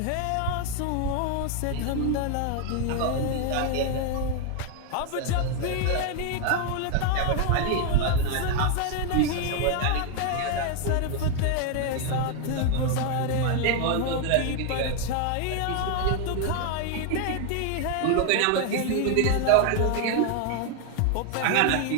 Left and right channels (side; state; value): both; different; correlation 0.00